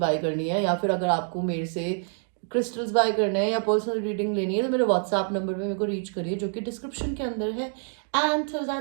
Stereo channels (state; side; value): silent; left; 61 dB below the other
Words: करनी है, या फिर अगर आपको मेरे से क्रिस्टल्स बाय करने हैं या पर्सनल रीडिंग लेनी है, तो मेरे व्हाट्सएप नंबर पे मेरे को रीच करिए, जो कि डिस्क्रिप्शन के अंदर है. And till